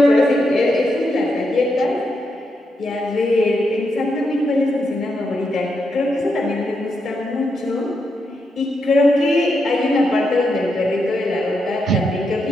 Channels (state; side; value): normal; both; correlation 0.83